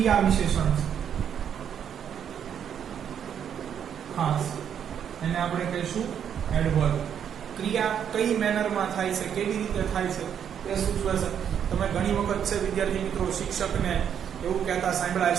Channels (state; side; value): quieter; left; 8.6 dB